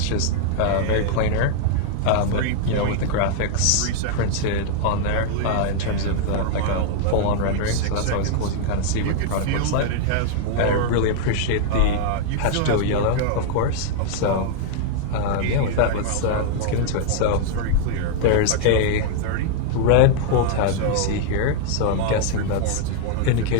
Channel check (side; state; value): both; different; correlation 0.00